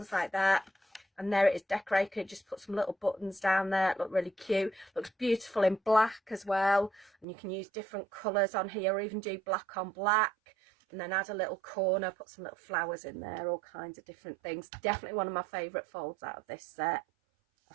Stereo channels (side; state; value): left; drops out; at 7.2 s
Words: like that. And there it is decorated. Just put some little buttons down there. It look really cute. Looks beautiful in black as well, and you can use different colours on here, or even do black on black. And then add a little corner, put some little flowers in there, all kinds of different things. Definitely one of my favourite folds out of this set. I